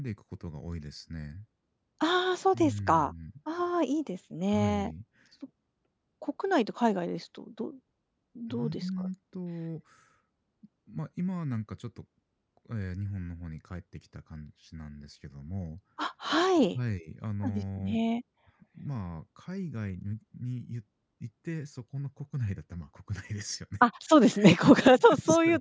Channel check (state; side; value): identical; both; correlation 1.00